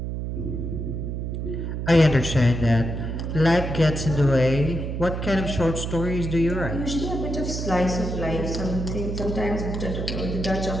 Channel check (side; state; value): right; noise; hum, 4 dB below the sound